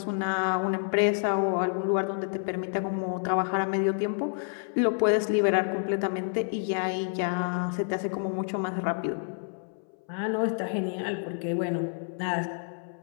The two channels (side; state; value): right; silent; 59 dB below the other